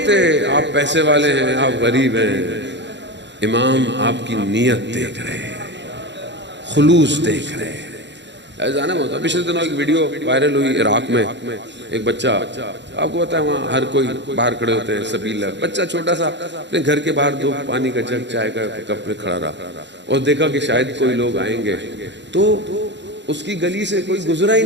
آپ پیسے والے ہیں، آپ غریب ہیں، امام آپ کی نیت دیکھ رہے ہیں، خلوص دیکھ رہے ہیں۔ جانا ہوتا پچھلے دنوں ایک ویڈیو وائرل ہوئی عراق میں، ایک بچہ، آپ کو پتا ہے وہاں ہر کوئی باہر کھڑے ہوتے ہیں، سبیل بچہ چھوٹا سا اپنے گھر کے باہر دو پانی کا جگ چائے کا کپ میں کھڑا رہا اور دیکھا کہ شاید کوئی لوگ آئیں گے، تو اس کی گلی سے کوئی گزرا ہی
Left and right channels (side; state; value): left; late; 0.52 ms